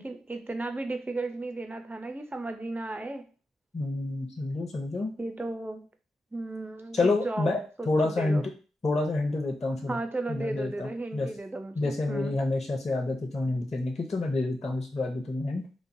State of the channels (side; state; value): both; normal; correlation 0.89